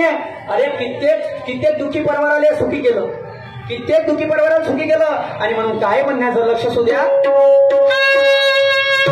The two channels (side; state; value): both; identical; correlation 1.00